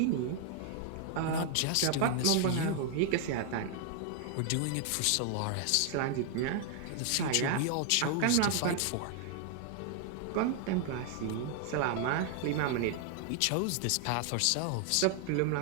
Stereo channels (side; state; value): both; different; correlation 0.00